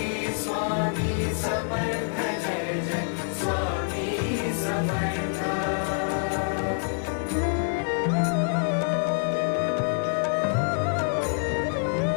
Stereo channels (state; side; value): silent; right; digital silence